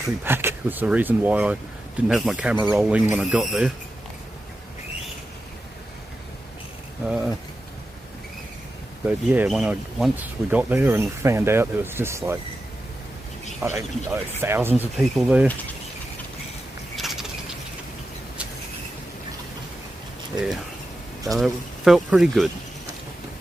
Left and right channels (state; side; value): normal; both; correlation 0.91